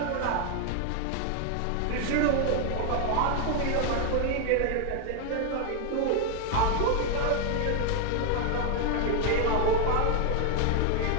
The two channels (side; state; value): both; different; correlation 0.01